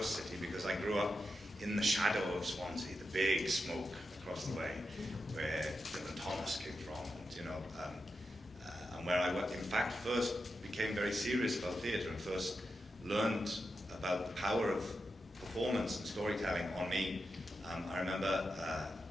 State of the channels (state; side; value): normal; both; correlation 0.88